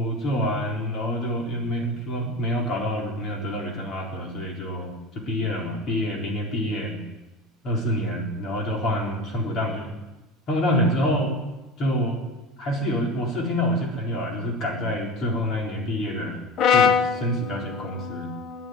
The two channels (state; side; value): normal; both; correlation 0.30